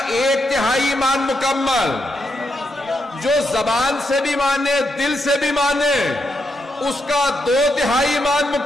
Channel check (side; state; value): both; normal; correlation 0.82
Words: 1/3 ایمان مکمل، جو زبان سے بھی مانے دل سے بھی مانے اس کا 2/3 ایمان